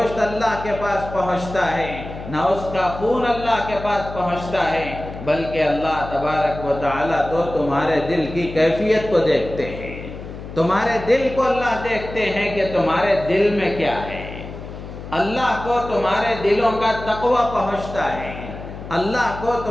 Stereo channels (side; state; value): left; noise; hum, 11 dB below the sound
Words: اللہ کے پاس پہنچتا ہے، نہ اس کا خون اللہ کے پاس پہنچتا ہے، بلکہ اللہ تبارک و تعالیٰ تو تمہارے دل کی کیفیت کو دیکھتے ہیں۔ تمہارے دل کو اللہ دیکھتے ہیں کہ تمہارے دل میں کیا ہے۔ اللہ کو تمہارے دلوں کا تقوی پہنچتا ہے، اللہ کو